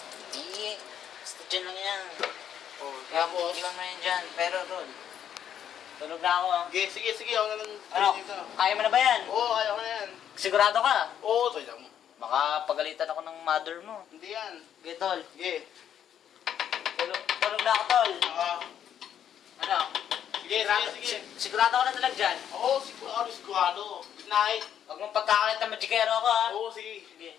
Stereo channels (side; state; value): right; quieter; 9.5 dB